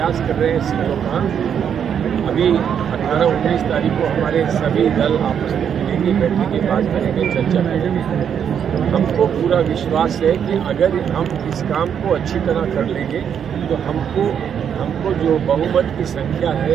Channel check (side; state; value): left; quieter; 8.2 dB